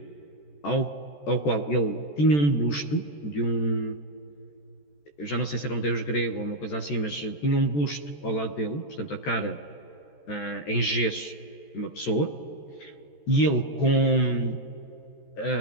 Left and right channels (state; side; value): late; right; 14 ms